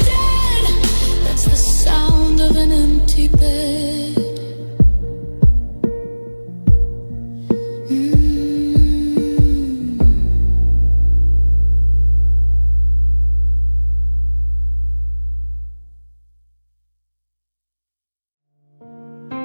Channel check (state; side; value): inverted; both; correlation -1.00